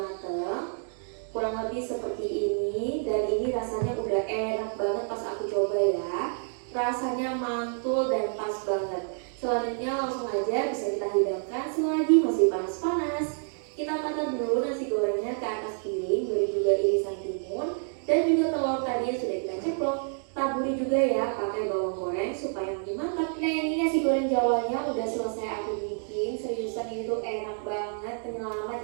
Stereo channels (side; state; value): left; silent; 56 dB below the other